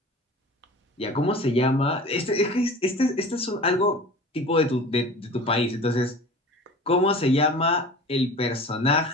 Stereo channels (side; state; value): both; normal; correlation 0.39